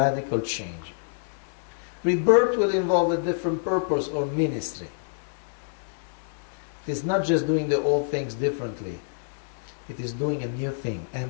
change. Rebirth will involve a different purpose or ministry. It is not just doing the old things differently. It is doing a new thing,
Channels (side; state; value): right; silent; digital silence